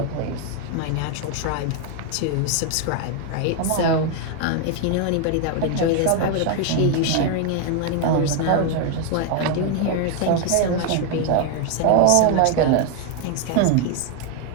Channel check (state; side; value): different; both; correlation 0.01